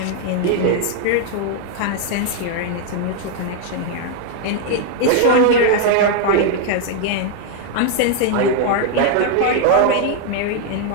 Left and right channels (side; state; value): both; different; correlation 0.00